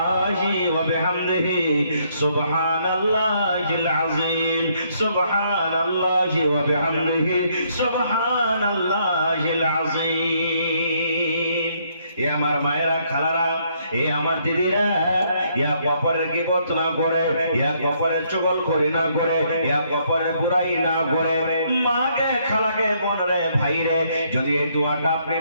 ওয়া বিহামদিহি সুবহানাল্লাহিল আযীম সুবহানাল্লাহি ওয়া বিহামদিহি সুবহানাল্লাহিল আযীম। এ আমার মায়েরা, খালারা, এ আমার দিদিরা, ইয়া কপরের গীবত না করে, ইয়া কপরের চুগলখড়ি না করে, ইয়া কপরের বুরাই না করে, মাকে, খালাকে, বোনরে, ভাইরে, যদি এই দোয়াটা আপনি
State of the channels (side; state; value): both; inverted; correlation -0.70